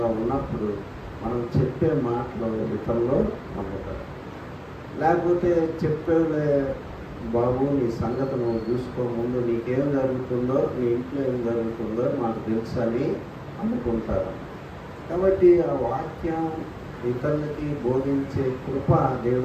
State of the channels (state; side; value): identical; both; correlation 1.00